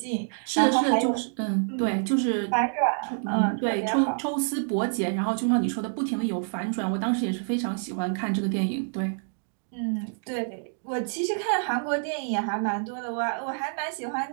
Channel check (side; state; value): left; silent; digital silence